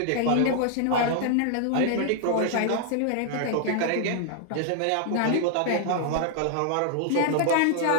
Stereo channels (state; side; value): different; both; correlation 0.00